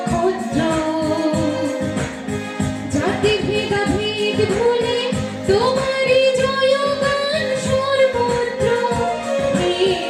জাতি ভেদাভেদ ভুলে তোমারই জয়গান সর্বত্র। হে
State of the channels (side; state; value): both; identical; correlation 1.00